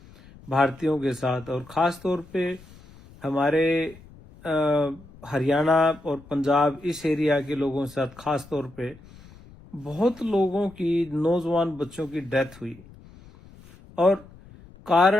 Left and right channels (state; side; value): noise; left; rumble, 22 dB below the sound